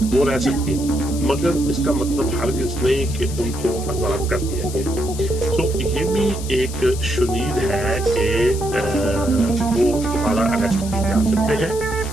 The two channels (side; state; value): left; noise; hiss, 12 dB below the sound